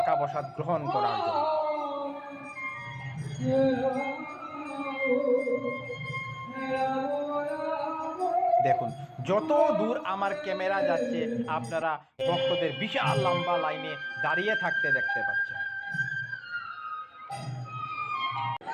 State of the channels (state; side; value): identical; both; correlation 1.00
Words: প্রসাদ গ্রহণ করার জন্য। দেখুন, যত দূর আমার ক্যামেরা যাচ্ছে আপনারা ভক্তদের বিশাল লম্বা লাইনে দাঁড়িয়ে থাকতে দেখতে পাচ্ছেন।